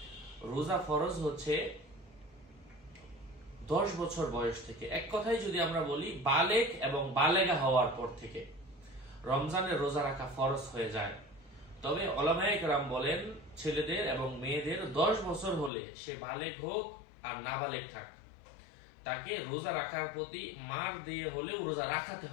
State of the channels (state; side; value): drops out; right; at 15.7 s